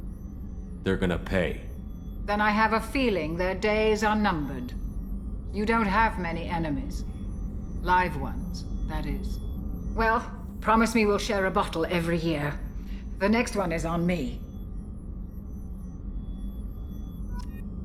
They're gonna pay. Then I have a feeling their days are numbered. You don't have many enemies. Live ones, that is. Well, promise me we'll share a bottle every year. The next one is on me.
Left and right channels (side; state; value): both; identical; correlation 1.00